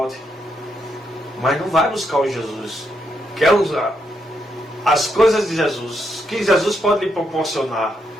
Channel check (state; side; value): normal; both; correlation 0.79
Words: Mas não vai buscar o Jesus. Quer usar as coisas de Jesus, que Jesus pode lhe proporcionar,